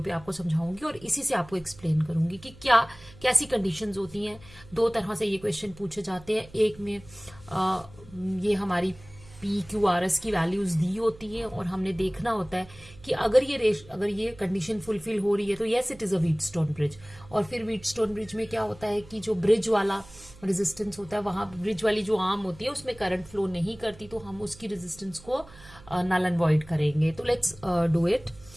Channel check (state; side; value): noise; right; hum, 21 dB below the sound